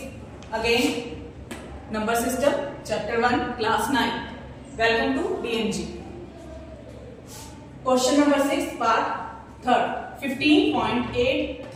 again number system chapter 1 class 9. Welcome to DMG. Question number 6 part 3rd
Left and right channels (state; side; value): identical; both; correlation 1.00